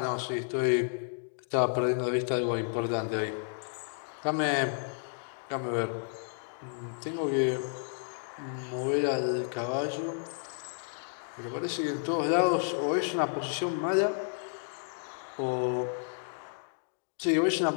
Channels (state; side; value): silent; right; digital silence